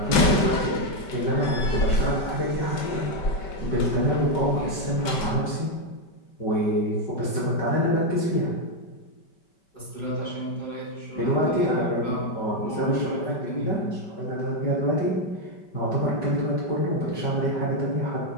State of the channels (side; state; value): right; late; 5.2 ms